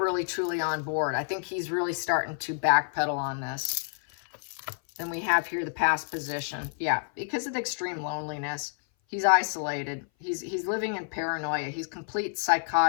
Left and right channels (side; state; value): right; silent; 57 dB below the other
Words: truly on board. I think he's really starting to backpedal on this. Then we have here the past position. Yeah, because of the extreme loneliness, he's isolated. He's living in paranoia. He's complete